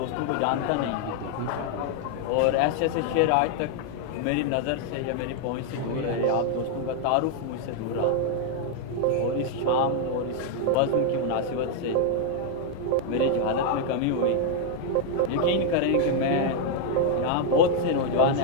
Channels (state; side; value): different; both; correlation 0.00